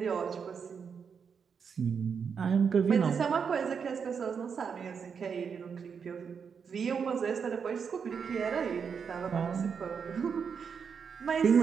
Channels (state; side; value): quieter; left; 6.4 dB